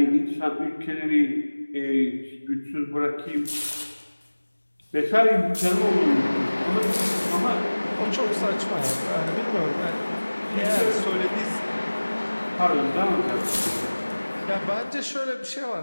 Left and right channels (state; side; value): inverted; both; correlation -1.00